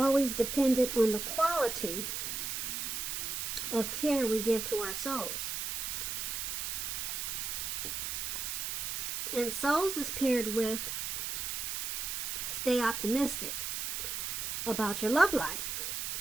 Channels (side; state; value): right; noise; hiss, 2 dB below the sound